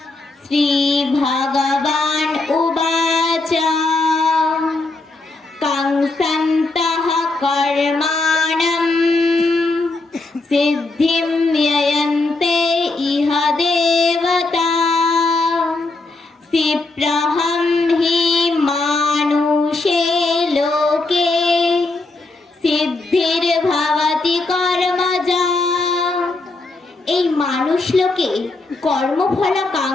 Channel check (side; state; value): right; quieter; 3.2 dB